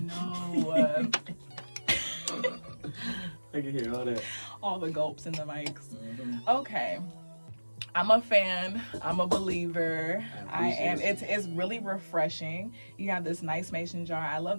I can hear all that. All the gulps in the mics. Okay. I'm a fan. I'm a believer. I am. It's really refreshing. You have this nice mason jar. I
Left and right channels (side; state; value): both; inverted; correlation -1.00